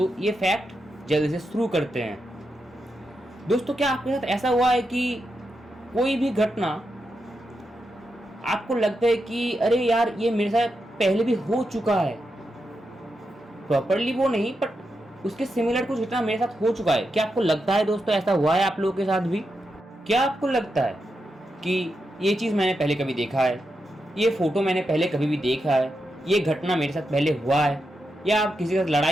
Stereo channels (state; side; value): normal; both; correlation 0.86